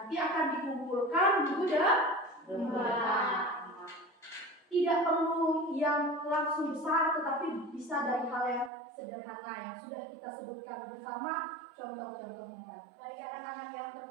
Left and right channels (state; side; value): drops out; left; at 8.7 s